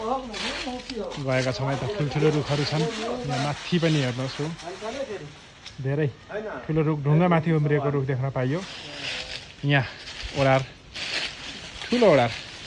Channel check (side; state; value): both; identical; correlation 1.00